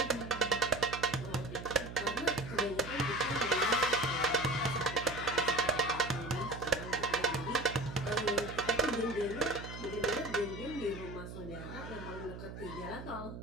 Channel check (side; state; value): right; noise; hum, 10 dB below the sound